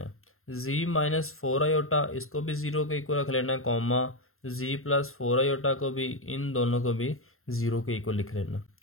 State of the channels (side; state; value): right; late; 0.62 ms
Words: है। z-4 आयोटा इसको भी ज़ीरो के इक्वल रख लेना है, कॉमा z+4 आयोटा को भी, इन दोनों को भी ज़ीरो के इक्वल लिख लेना।